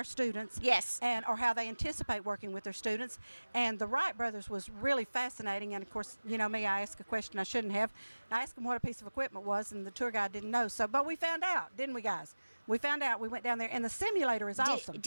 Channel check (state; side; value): inverted; both; correlation -1.00